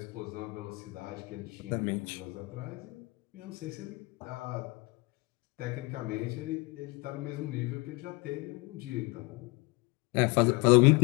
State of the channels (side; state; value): right; quieter; 25.4 dB